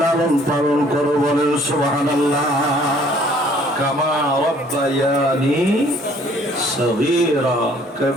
লালন পালন করো। বলেন সুবহানাল্লাহ। কামা রব্বায়ানি সগীরা,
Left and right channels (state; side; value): normal; both; correlation 0.58